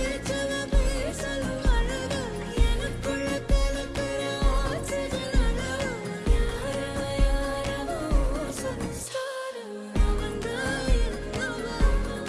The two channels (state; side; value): identical; both; correlation 1.00